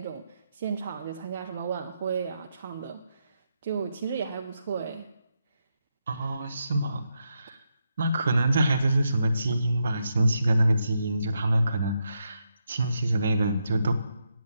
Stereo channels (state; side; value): inverted; both; correlation -0.82